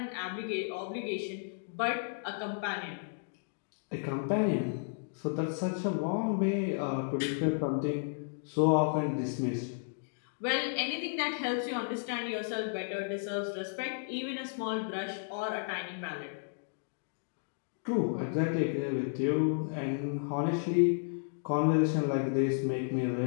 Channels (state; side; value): silent; right; digital silence